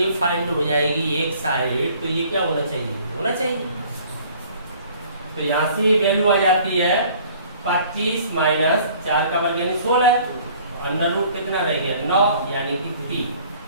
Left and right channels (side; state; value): both; inverted; correlation -0.53